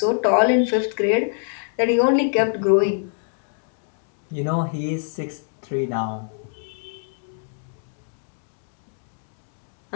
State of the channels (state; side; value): silent; right; digital silence